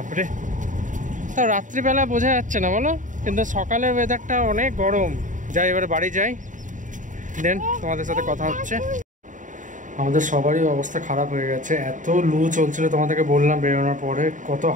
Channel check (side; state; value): left; late; 0.37 ms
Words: তা রাত্রিবেলা বোঝা যাচ্ছে না বলো, কিন্তু সকালের ওয়েদারটা অনেক গরম। যাই এবারে বাড়ি যাই, দেন তোমাদের সাথে কথা হচ্ছে। আমাদের সবারই অবস্থা খারাপ হয়ে গেছে, এত লু চলছিল। তোমাদেরকে বললাম বেরোনোর পরে কত